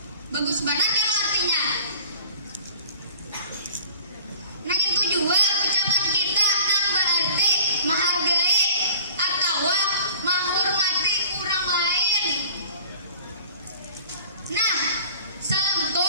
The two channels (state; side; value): inverted; both; correlation -0.48